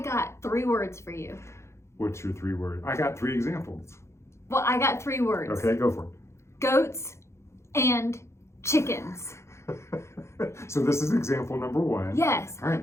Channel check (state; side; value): late; right; 0.13 ms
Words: 3 words for you. What's your 3 words? I got 3 examples. Well, I got 3 words. Okay, go for it. Goats and chickens. So this is example number 1. Yes. All right,